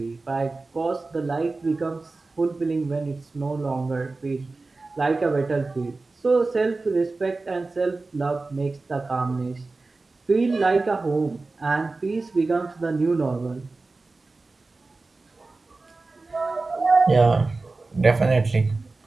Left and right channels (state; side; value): quieter; left; 3.5 dB